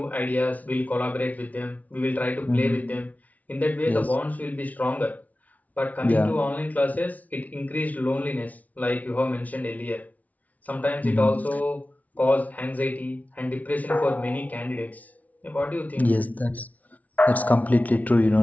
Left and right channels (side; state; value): right; late; 0.071 ms